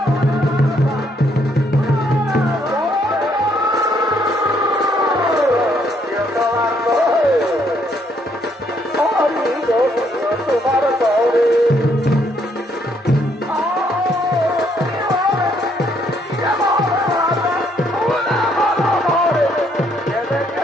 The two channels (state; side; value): normal; both; correlation 0.70